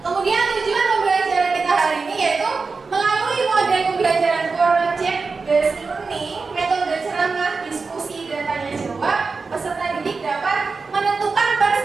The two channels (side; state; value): left; quieter; 4.4 dB